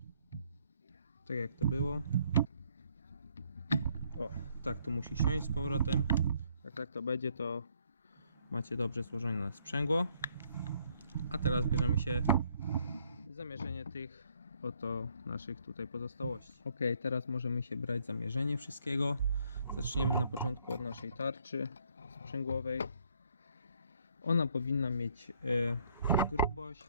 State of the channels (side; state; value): both; inverted; correlation -0.66